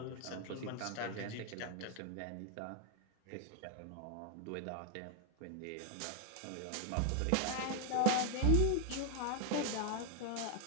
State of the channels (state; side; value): different; both; correlation 0.01